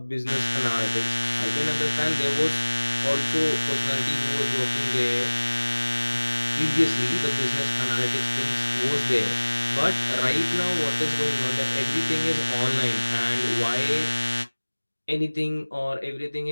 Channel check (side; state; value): both; inverted; correlation -1.00